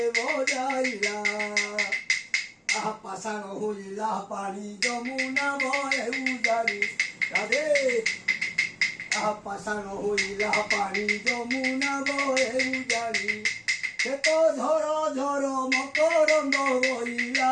বজাইলা আহা পাষাণ হইলা পানি যমুনা ভয়ে উজারি রাধে আহা পাষাণ হইলা পানি যমুনা ভয়ে উজারি সে তো ঝর ঝর মকরন্দ বইলা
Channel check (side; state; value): both; identical; correlation 1.00